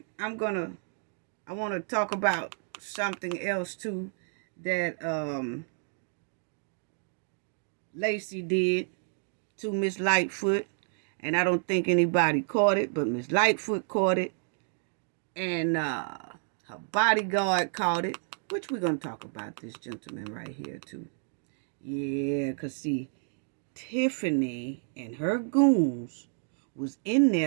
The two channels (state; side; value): silent; left; 58 dB below the other